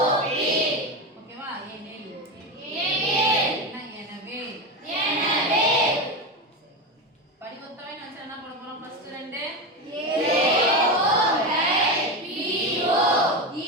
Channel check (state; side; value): normal; both; correlation 0.17